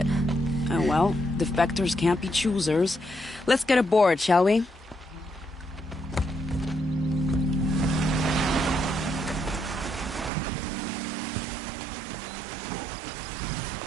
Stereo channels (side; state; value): left; drops out; at 10.3 s